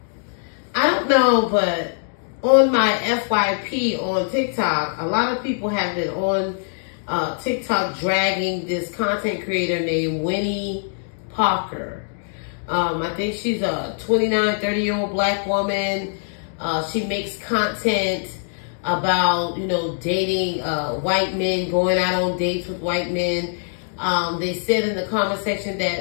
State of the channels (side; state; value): right; silent; digital silence